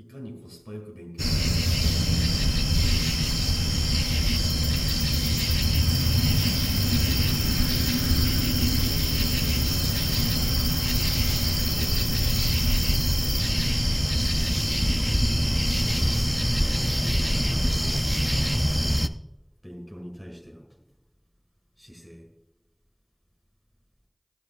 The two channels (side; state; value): both; identical; correlation 1.00